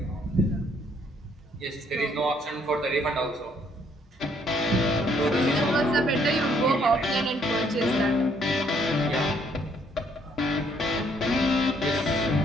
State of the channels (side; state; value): both; normal; correlation 0.67